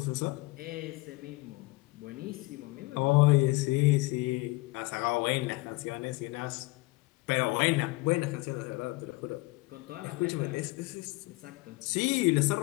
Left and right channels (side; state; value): right; quieter; 22.2 dB